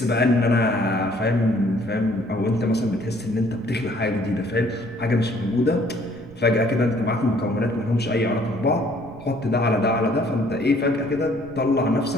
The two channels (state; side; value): noise; right; rumble, 21 dB below the sound